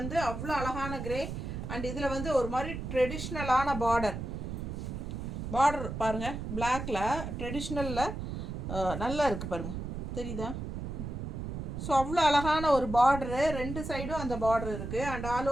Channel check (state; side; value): noise; right; rumble, 5 dB below the sound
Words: அவ்வளோ அழகான கிரே. அண்ட் இதில் வந்து ஒரு மாதிரி ட்ரெடிஷ்னலான பார்டர் பாருங்கள், பிளாக்ல ட்ரெடிஷ்னலில் நல்லா இருக்குது பாருங்கள், தெரியுதா? ஸோ அவ்வளோ அழகான ஒரு பார்டரு, 2 சைடும் அந்த பார்டர் இருக்குது. அண்ட் ஆல்